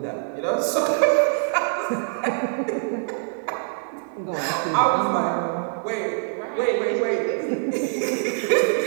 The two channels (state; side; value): silent; left; 61 dB below the other